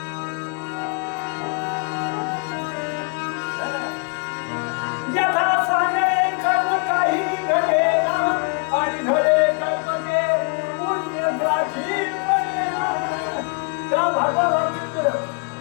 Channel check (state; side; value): quieter; right; 37.2 dB